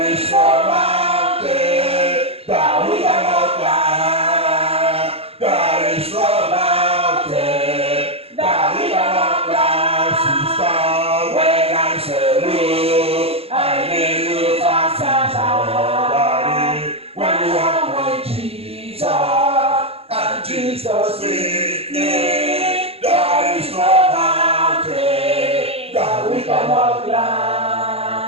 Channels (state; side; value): late; left; 0.29 ms